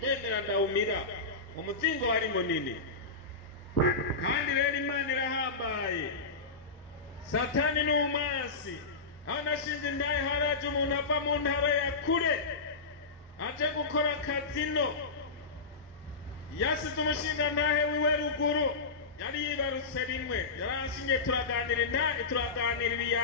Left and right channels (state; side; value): quieter; right; 4.0 dB